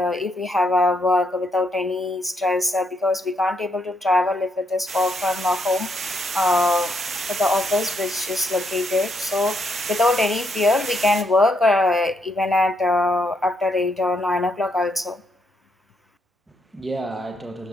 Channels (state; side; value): normal; both; correlation 0.76